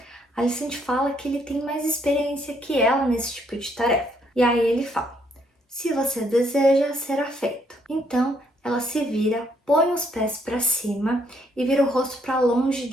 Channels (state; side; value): normal; both; correlation 0.70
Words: Alicent fala que ele tem mais experiência que ela nesse tipo de tarefa. E aí ele fala: se você deseja, será feito. Então ela se vira, põe os pés para cima e vira o rosto para longe